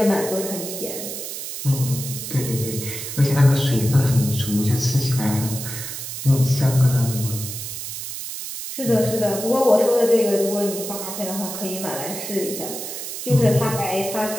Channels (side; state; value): right; noise; hiss, 7 dB below the sound